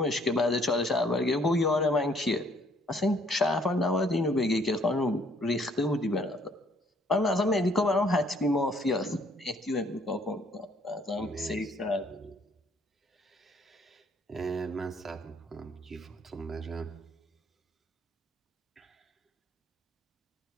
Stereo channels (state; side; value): normal; both; correlation 0.63